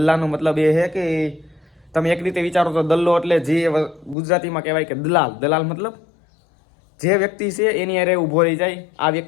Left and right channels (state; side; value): drops out; right; at 4.2 s